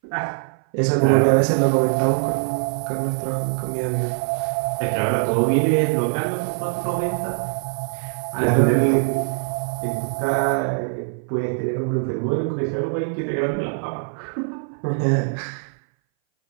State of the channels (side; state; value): left; silent; 60 dB below the other